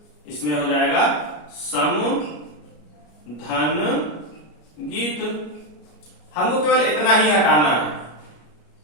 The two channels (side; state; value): right; late; 33 ms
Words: इसमें हो जाएगा सम धन गीत। हमको केवल इतना ही हटाना है,